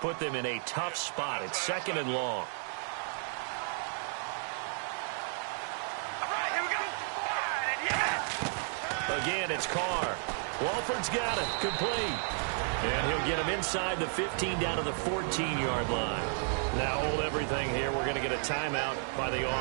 them in a tough spot. It's 2nd and long. Again, it's Carr. Walford's got it. Complete. And he'll get him inside the 15 down to the 14-yard line. Now hold everything here. We're going to get a timeout by the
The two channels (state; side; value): silent; left; 56 dB below the other